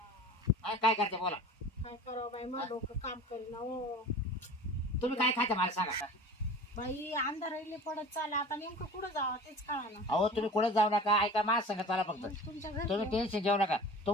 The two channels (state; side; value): normal; both; correlation 0.39